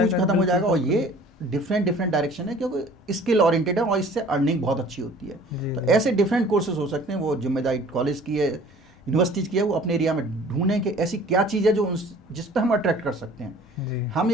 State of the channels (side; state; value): both; normal; correlation 0.50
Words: जाएगा, खत्म हो बिल्कुल जाएगा। और folk ये डिफरेंट डायरेक्शन है, क्योंकि स्किल ओरिएंटेड है और इससे अर्निंग बहुत अच्छी होती है। जी, तो जी। ऐसे डिफरेंट कोर्सेज हो सकते हैं, वो जिम्मेदारी कॉलेज की है, यूनिवर्सिटीज की है, वो अपने एरिया में ढूंढें कि ऐसी क्या चीज़ है जो जिस पे हम अट्रैक्ट कर सकते हैं। जी। हम